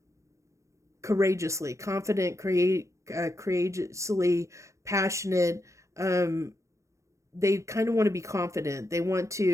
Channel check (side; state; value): left; late; 0.15 ms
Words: courageously, confident, courageously, passionate. They kind of want to be confident. They want